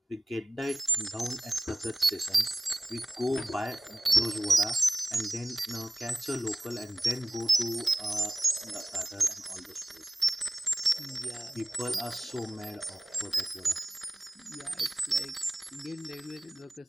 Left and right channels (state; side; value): normal; both; correlation 0.97